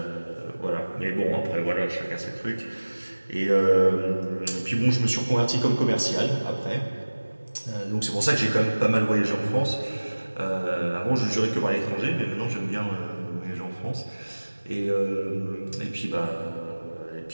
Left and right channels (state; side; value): inverted; both; correlation -1.00